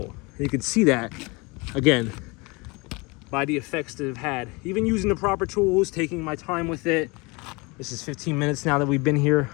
You can see that, again, by the effects that I've had. Even using the proper tools, taking my time with it. This is 15 minutes now that we've been here.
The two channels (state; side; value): quieter; right; 26.8 dB